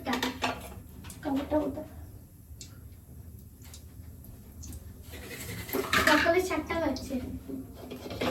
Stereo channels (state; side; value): identical; both; correlation 1.00